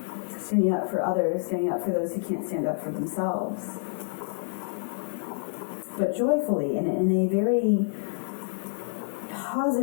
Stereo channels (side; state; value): right; silent; digital silence